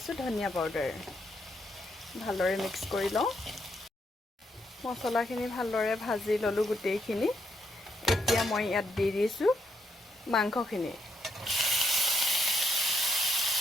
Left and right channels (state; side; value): normal; both; correlation 0.77